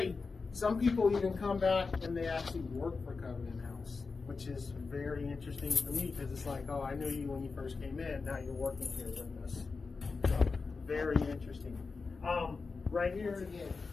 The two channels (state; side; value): quieter; right; 4.4 dB